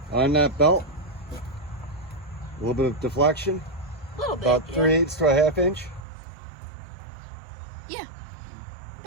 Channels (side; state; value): left; drops out; at 6.1 s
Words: on that belt. A little bit of deflection. A little bit. About yeah. 3/8 to a 1/2 inch. Yeah.